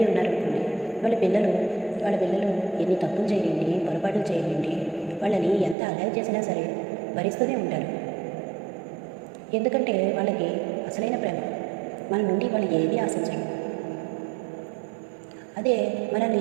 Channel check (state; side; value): drops out; left; at 5.8 s